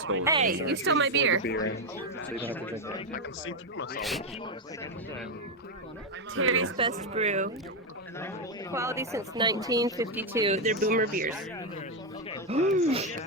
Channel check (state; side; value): normal; both; correlation 0.06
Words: stole it. Hey, you stole my beer. I can see through myself. Terry's Best Brew. Quality since 1952. They're boomer beers.